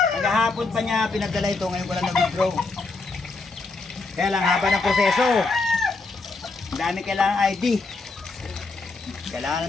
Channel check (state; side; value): quieter; right; 3.7 dB